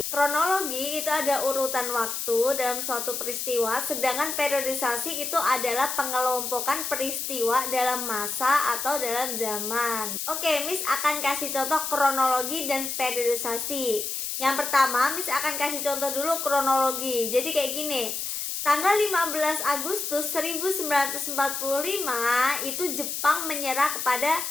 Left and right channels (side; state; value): left; noise; hiss, 3 dB below the sound